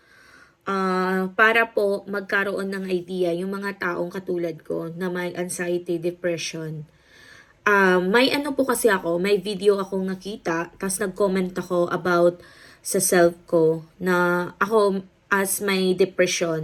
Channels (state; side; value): identical; both; correlation 1.00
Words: para po magkaroon ng idea yung mga taong katulad ko na may anxiety, depression. May ano po kasi ako, may video akong nakita, tapos nag-comment ako about sa self ko na ako as may